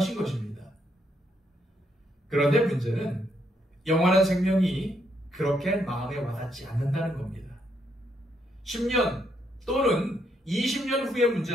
것입니다. 그런데 문제는 영원한 생명이 그렇게 마음에 와닿지 않는다는 겁니다. 10년 또는 20년 후의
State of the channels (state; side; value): normal; both; correlation 0.75